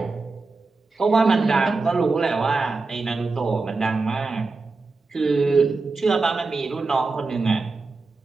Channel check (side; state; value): left; quieter; 3.9 dB